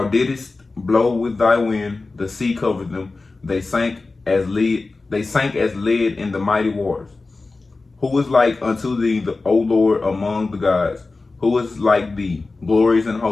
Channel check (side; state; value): right; quieter; 3.6 dB